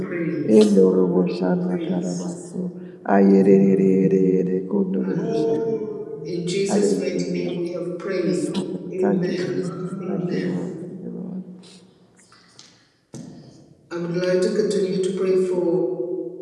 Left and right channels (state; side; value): identical; both; correlation 1.00